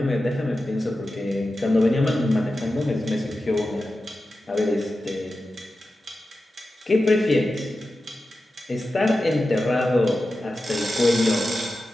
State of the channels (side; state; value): both; normal; correlation 0.92